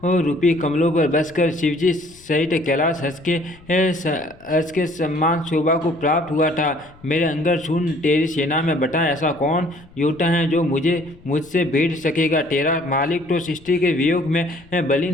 रूपी कमलों पर बसकर शिवजी सहित कैलाश हंस के सम्मान शोभा को प्राप्त हुआ था। मेरे अंदर सुन, तेरी सेना में बता ऐसा कौन योद्धा है जो मुझसे भिड़ सकेगा। तेरा मालिक तो सृष्टि के वियोग में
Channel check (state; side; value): noise; left; rumble, 25 dB below the sound